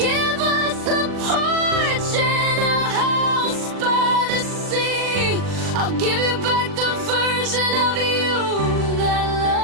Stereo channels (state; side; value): late; left; 40 ms